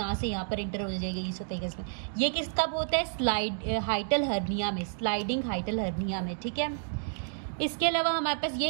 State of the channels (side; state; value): left; silent; digital silence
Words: पर एंटर हो जाएगा ईसोफेगस में। ये किस कब होता है? हाइटल हर्निया में, स्लाइडिंग हाइटल हर्निया में, ठीक है। इसके अलावा हमारे पास